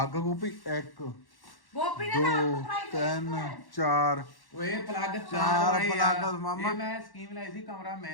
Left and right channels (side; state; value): right; late; 1.1 ms